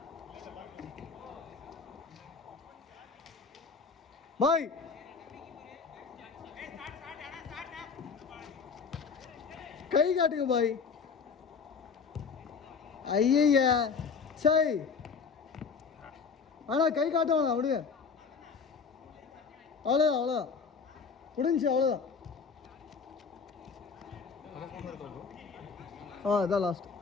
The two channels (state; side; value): quieter; right; 5.5 dB